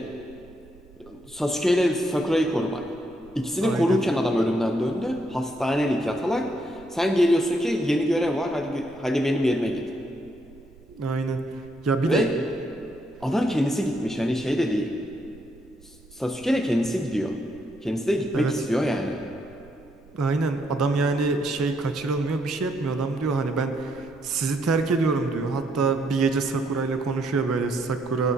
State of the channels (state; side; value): noise; right; rumble, 25 dB below the sound